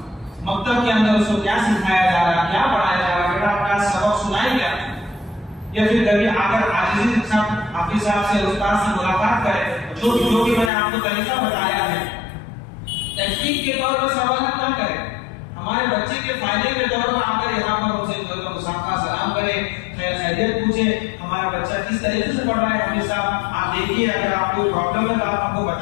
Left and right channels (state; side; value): drops out; right; at 10.7 s